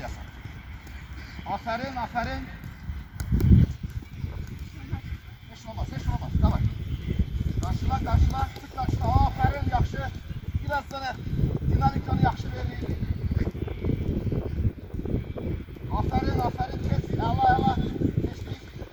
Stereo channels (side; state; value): both; identical; correlation 1.00